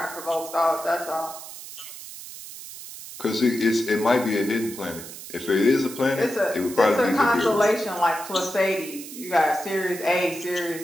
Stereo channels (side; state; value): right; noise; hiss, 13 dB below the sound